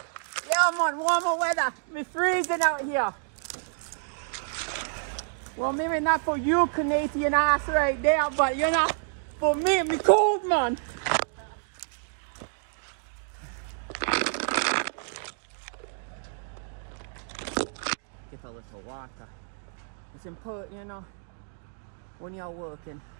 Yeah, man, warmer weather. We're freezing out here. Well, maybe not for you, Canadian ass right there, but you know, for me, me cold, man. Get a little water. It's important, you know, when you're working,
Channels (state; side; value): silent; left; digital silence